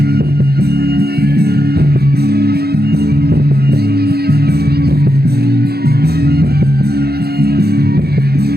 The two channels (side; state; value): left; late; 0.46 ms